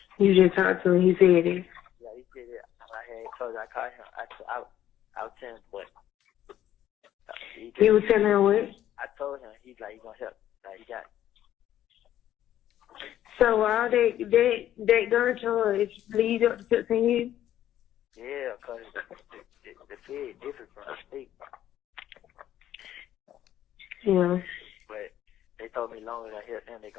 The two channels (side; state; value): right; quieter; 11.9 dB